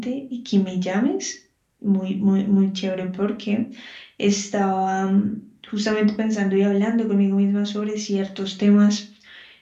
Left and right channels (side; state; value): both; identical; correlation 1.00